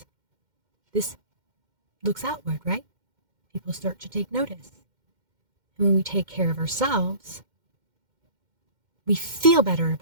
this looks outward, right? People start to take notice. And when we take care of ourselves, we feel better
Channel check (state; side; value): late; left; 2.1 ms